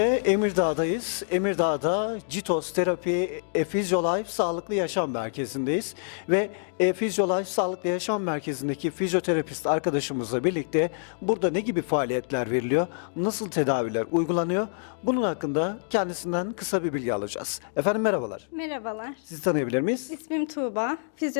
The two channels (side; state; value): right; silent; digital silence